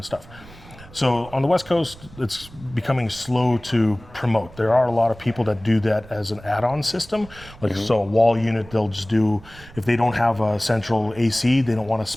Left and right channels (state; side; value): noise; right; rumble, 20 dB below the sound